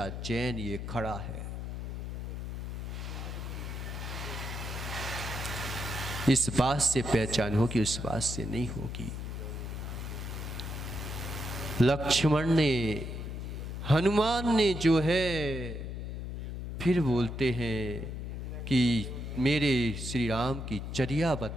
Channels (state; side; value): noise; left; hum, 6 dB below the sound